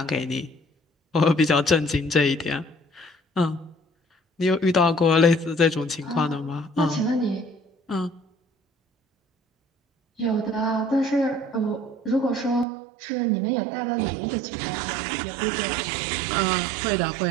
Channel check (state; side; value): drops out; left; at 12.7 s